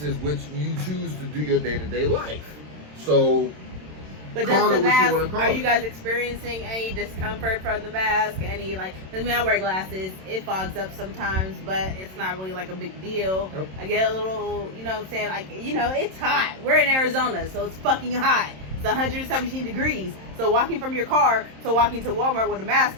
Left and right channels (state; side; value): late; left; 27 ms